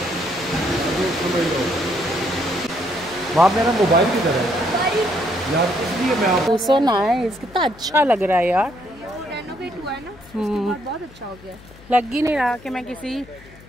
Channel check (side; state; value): left; noise; hum, 22 dB below the sound